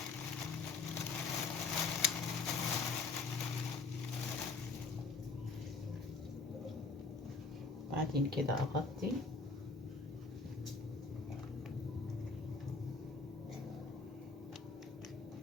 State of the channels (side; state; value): right; quieter; 4.3 dB